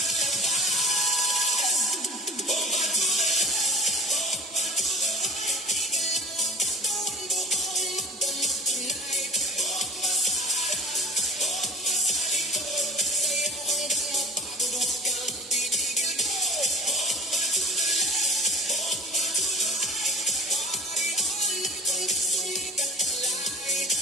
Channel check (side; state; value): both; normal; correlation 0.43